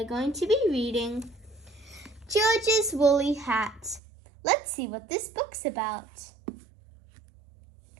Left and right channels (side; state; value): left; drops out; at 4.0 s